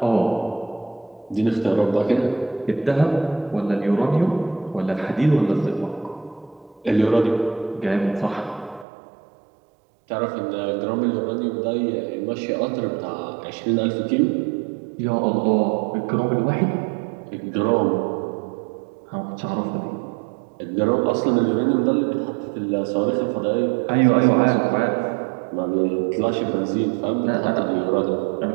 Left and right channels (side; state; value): left; drops out; at 8.8 s